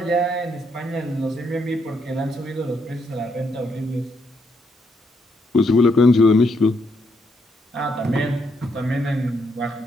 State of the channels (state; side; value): normal; both; correlation 0.76